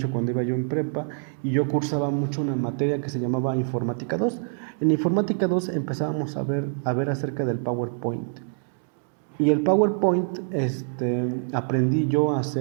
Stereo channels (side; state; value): left; silent; 62 dB below the other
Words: cuando iba yo en prepa y yo cursaba mucho una materia que se llamaba Informática 2. En Informática 2 empezábamos a ver acerca del PowerPoint. Y el PowerPoint, aprendí yo a